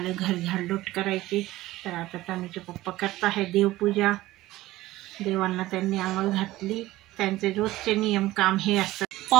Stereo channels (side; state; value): left; quieter; 17.0 dB